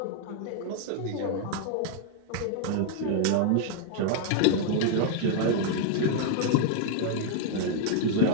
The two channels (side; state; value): both; different; correlation 0.00